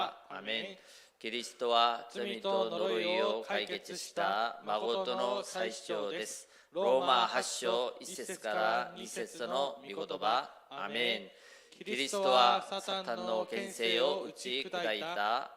아멘. 그리스도와 罪と呪いを解決した誠の最主張です。 로마 8章 1節から2節の御言葉。 아멘. キリストはサタンの権勢を打ち砕いた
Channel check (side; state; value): both; identical; correlation 1.00